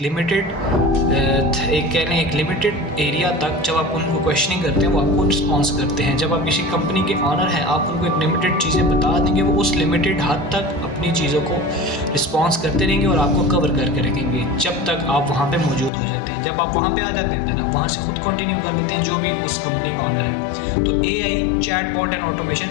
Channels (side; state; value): right; drops out; at 15.9 s